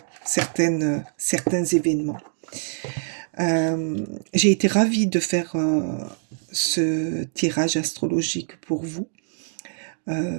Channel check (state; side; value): silent; left; digital silence